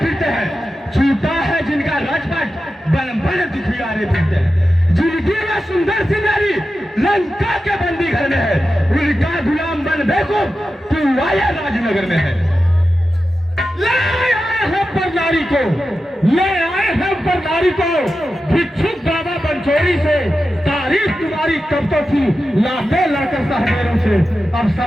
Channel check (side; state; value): both; normal; correlation 0.92